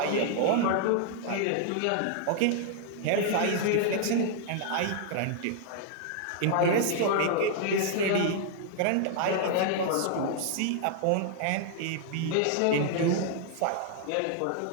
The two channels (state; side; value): different; both; correlation -0.01